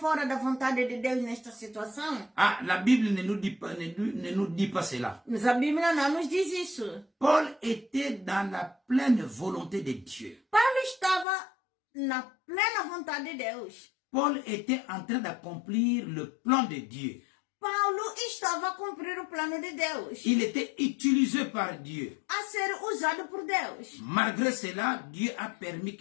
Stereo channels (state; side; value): drops out; right; at 11.2 s